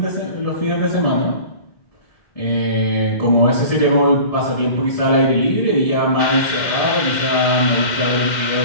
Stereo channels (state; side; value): late; right; 2.1 ms